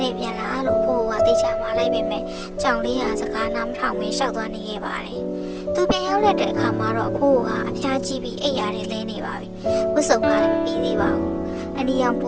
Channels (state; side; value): identical; both; correlation 1.00